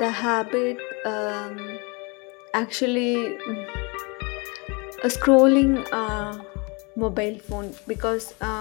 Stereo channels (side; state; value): right; quieter; 29.7 dB